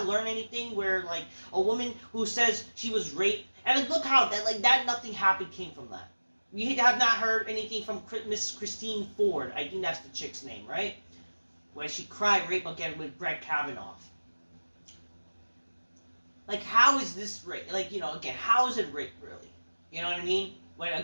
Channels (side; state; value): both; inverted; correlation -1.00